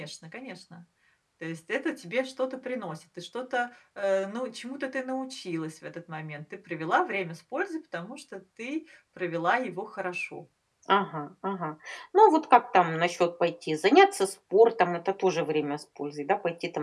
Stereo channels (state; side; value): identical; both; correlation 1.00